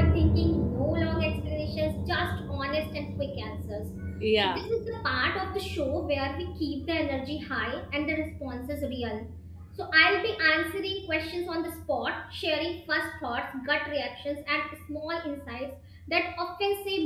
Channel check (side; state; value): both; identical; correlation 1.00